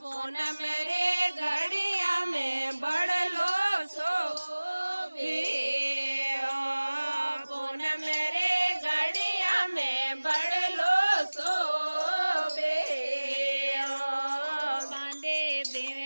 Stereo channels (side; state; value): both; inverted; correlation -1.00